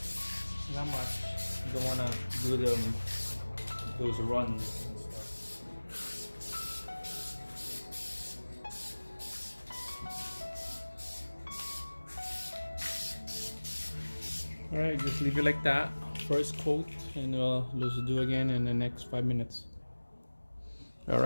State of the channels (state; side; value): inverted; both; correlation -1.00